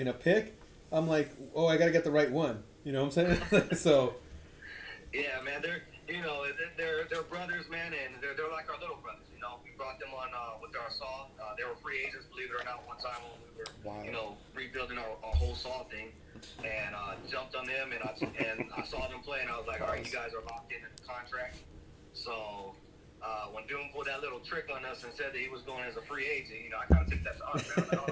a pick, I'm like, oh, I got to get the right one. You know what I'm saying? So. Yeah, man, they're brothers, man, and they're like our little brothers. We brought them on with our saw. They were free agents, believe it or not, one time when we were rebuilding our whole saw thing, and jumped on them, and I saw them play, and I was like, all right, you guys are locked in the contract. So when Doom pulled that little trick on us and said that he was going as a free agent, I kind of took that to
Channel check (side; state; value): both; identical; correlation 1.00